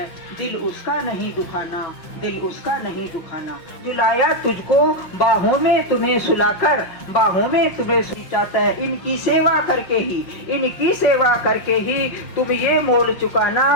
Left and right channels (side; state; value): right; late; 5.9 ms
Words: दिल उसका नहीं दुखाना, दिल उसका नहीं दुखाना। जुलाया तुझको बाहों में तुम्हें सुलाकर, बाहों में तुम्हें चाहता है। इनकी सेवा करके ही, इनकी सेवा करके ही तुम ये मोल चुकाना,